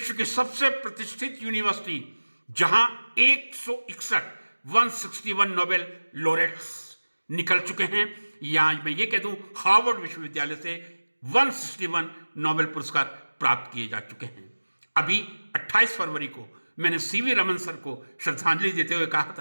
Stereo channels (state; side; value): inverted; both; correlation -1.00